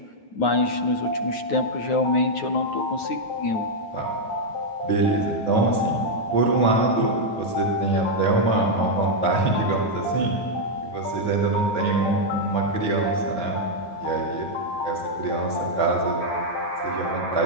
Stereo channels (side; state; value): right; late; 9.4 ms